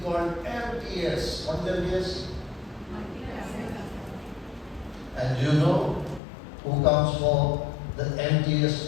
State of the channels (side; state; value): right; drops out; at 6.2 s